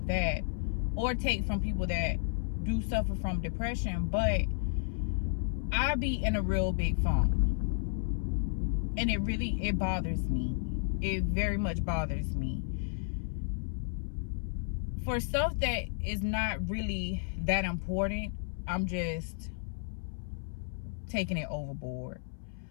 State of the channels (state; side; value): silent; right; 56 dB below the other